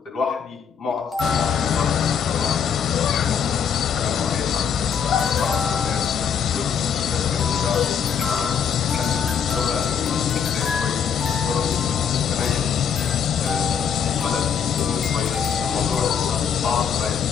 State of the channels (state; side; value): quieter; right; 7.3 dB